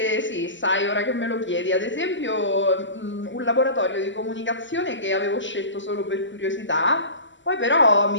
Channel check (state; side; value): late; right; 0.54 ms